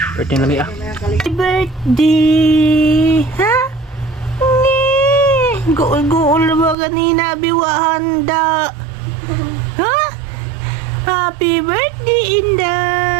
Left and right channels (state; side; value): drops out; left; at 6.8 s